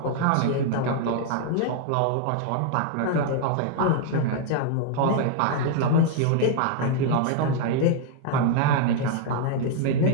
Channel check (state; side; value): different; both; correlation 0.00